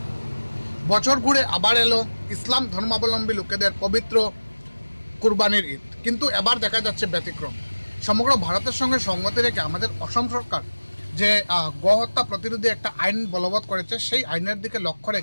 বছর ঘুরে আবার এলো ইসলাম ধর্মাবলম্বী লোকেদের পবিত্র কুরবানির ঈদ, কিন্তু এবার দেখা যাচ্ছে ব্যতিক্রম। সমগ্র ভারতের সঙ্গে সঙ্গতি রেখে আমাদের অসম সরকার যে গোহত্যা প্রতিরোধী একটা আইন বলবৎ করেছে, সেই আইনের দিকে লক্ষ্য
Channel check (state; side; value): inverted; both; correlation -1.00